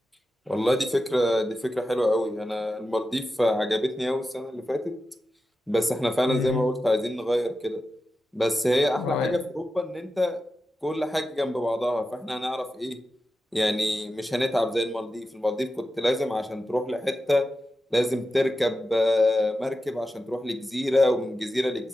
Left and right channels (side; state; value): both; normal; correlation 0.91